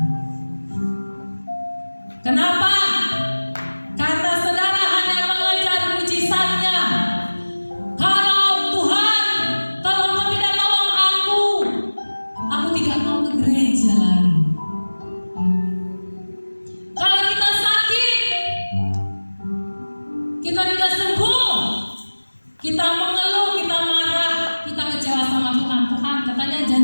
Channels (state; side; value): inverted; both; correlation -1.00